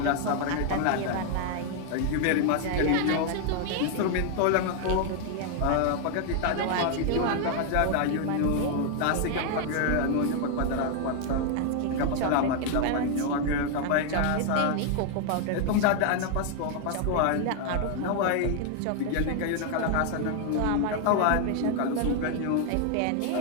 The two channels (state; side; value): different; both; correlation 0.00